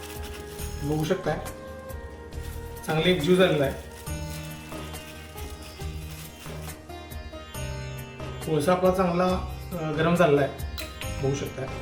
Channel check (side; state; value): both; identical; correlation 1.00